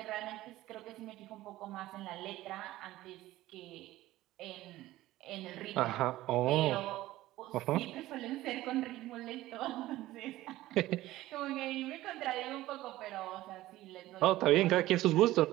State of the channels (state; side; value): quieter; left; 16.2 dB